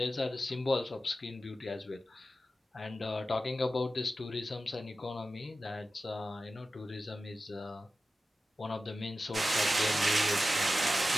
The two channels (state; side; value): normal; both; correlation 0.93